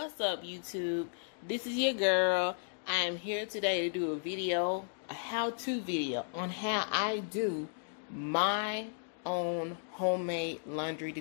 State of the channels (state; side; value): silent; right; digital silence